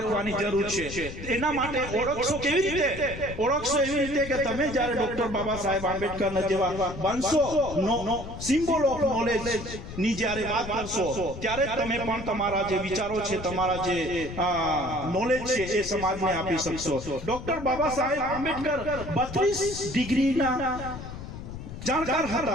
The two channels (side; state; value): left; noise; rumble, 10 dB below the sound